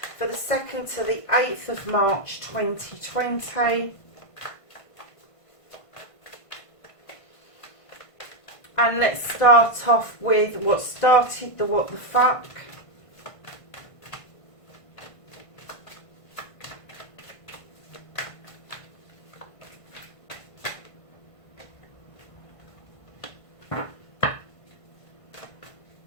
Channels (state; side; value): late; right; 1.5 ms